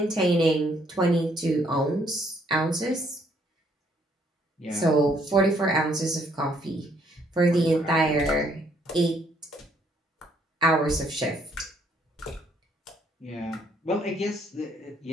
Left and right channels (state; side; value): normal; both; correlation 0.68